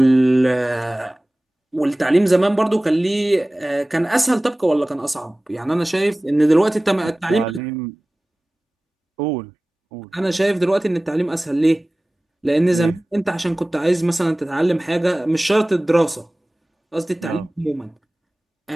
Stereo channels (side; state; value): both; normal; correlation 0.98